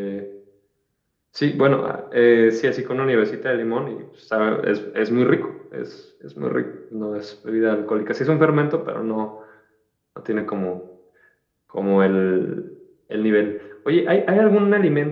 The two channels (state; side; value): identical; both; correlation 1.00